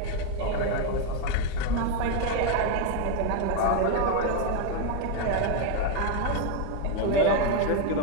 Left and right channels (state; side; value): different; both; correlation 0.02